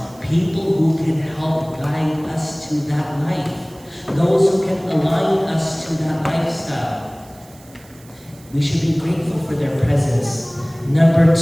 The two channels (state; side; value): noise; right; hiss, 25 dB below the sound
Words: People who can help guide us to that life. Those who can align us to that lifestyle. We should be grateful for their presence. Number